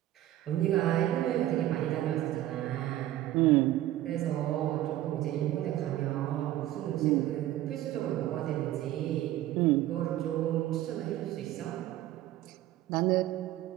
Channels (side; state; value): left; quieter; 14.2 dB